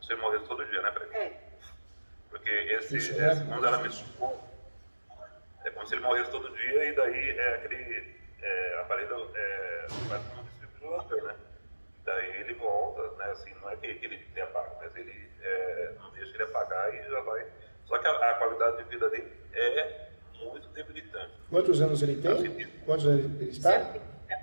se ele morresse todo dia, né, Fred? É. Porque quando ela me explicou, é como se ele morresse todo dia e daí aquele aparelho faz como um desfibrilador, né? Daí ele volta, né? Assim, não é que ele tenha pago, mas ele não deixa ele apagar e já vai. Só que a qualidade de vida dele é muito debilitante. Quantos anos ele tem? Quantos anos ele está?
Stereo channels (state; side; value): inverted; both; correlation -1.00